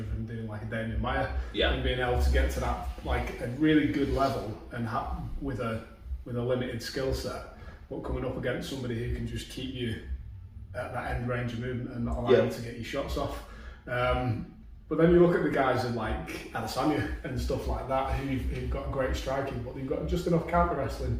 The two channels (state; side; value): identical; both; correlation 1.00